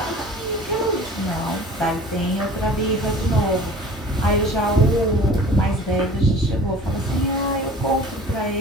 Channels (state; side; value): normal; both; correlation 0.44